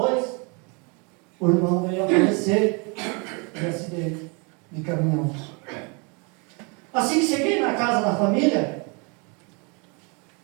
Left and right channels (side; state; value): left; quieter; 32.4 dB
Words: o irmão veio a falecer de acidente de caminhão. Assim que cheguei na casa da família,